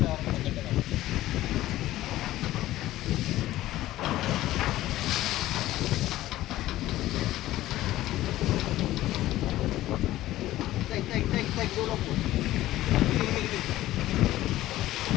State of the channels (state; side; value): quieter; right; 15.3 dB